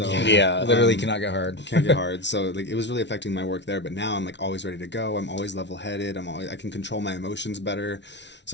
yeah, literally cannot get hard. Can't get hard. So like it was really affecting my work there. But now I'm like always ready to go. I'm always level-headed. I can control my emotions better.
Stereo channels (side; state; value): right; late; 0.51 ms